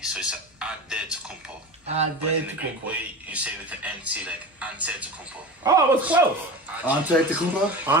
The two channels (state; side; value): normal; both; correlation 0.30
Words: so it's Antetokounmpo. But in the Greek way, you say with an NT, like Antetokounmpo. Oh, it was close. Antetokounmpo?